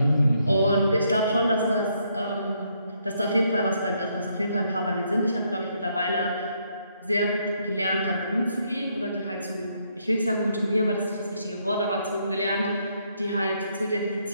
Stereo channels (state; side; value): inverted; both; correlation -0.73